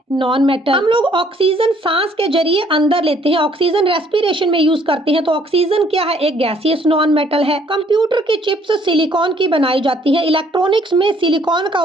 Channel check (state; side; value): normal; both; correlation 0.63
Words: Non metal. हम लोग ऑक्सीजन सांस के जरिए अंदर लेते हैं, ऑक्सीजन रेस्पिरेशन में यूज करते हैं तो ऑक्सीजन क्या है? एक गैसियस नॉन मेटल है। कंप्यूटर की चिप्स सिलिकॉन की बनाई जाती है, इलेक्ट्रॉनिक्स में सिलिकॉन का